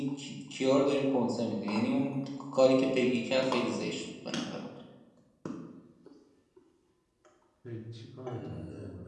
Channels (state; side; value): identical; both; correlation 1.00